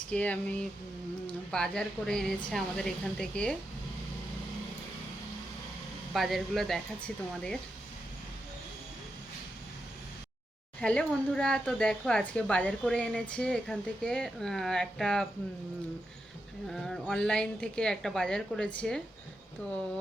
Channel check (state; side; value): normal; both; correlation 0.87